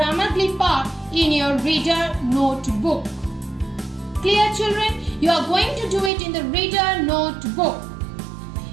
Glee part in your reader notebook. Clear, children? You are going to do it in the reader notebook.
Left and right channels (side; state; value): left; drops out; at 6.1 s